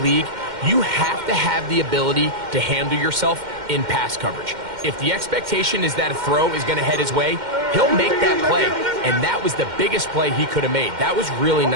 you have to have the ability to handle yourself in pass coverage. If the expectation is that a throw is going to head his way, he'll make that play. And that was the biggest play he could have made. That was really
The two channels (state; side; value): late; left; 2.1 ms